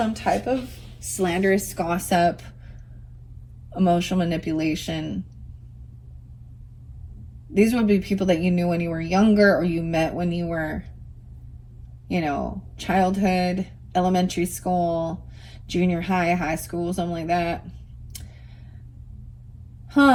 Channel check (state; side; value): identical; both; correlation 1.00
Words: type of slanderous gossip, emotional manipulation. These would be people that you knew when you were younger or you met when you were you know, childhood, elementary school, junior high, high school, something like that.